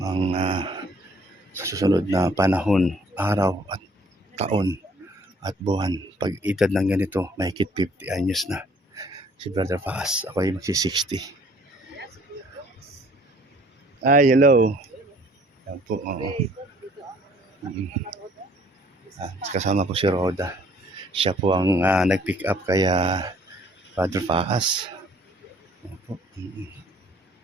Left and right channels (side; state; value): both; normal; correlation 0.58